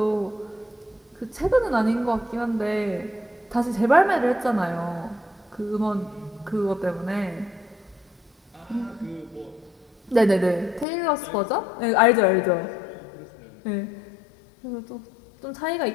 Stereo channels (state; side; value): drops out; right; at 10.9 s